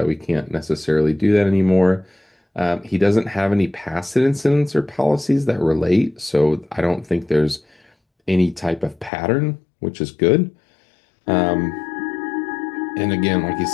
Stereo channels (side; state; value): right; drops out; at 9.1 s